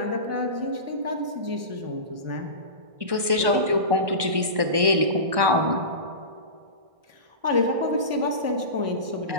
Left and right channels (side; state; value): left; late; 1.2 ms